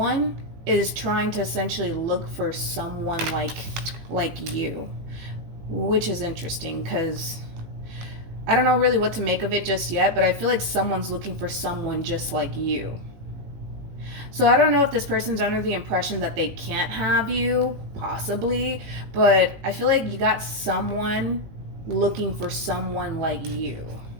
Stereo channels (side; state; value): left; late; 18 ms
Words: is trying to essentially look for someone like you, which is interesting because I don't know really what to make of it just yet, but I feel like someone's looking for someone just like you. So I don't know if this person's under the impression that they can't have you, possibly, but I feel like you got someone looking for someone like you.